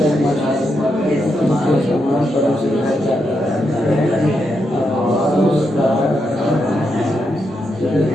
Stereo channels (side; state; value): both; normal; correlation 0.83